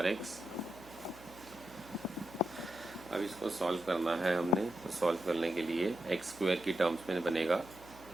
अब इसको सॉल्व करना है हमने, तो सॉल्व करने के लिए एक्स स्क्वायर की टर्म्स में बनेगा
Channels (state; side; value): noise; right; hum, 22 dB below the sound